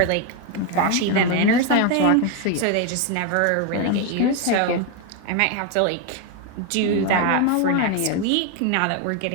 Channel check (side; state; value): both; different; correlation 0.01